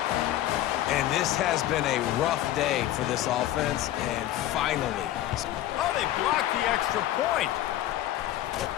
And this has been a rough day for this offense, and finally. Oh, they blocked the extra point.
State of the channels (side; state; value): right; quieter; 13.6 dB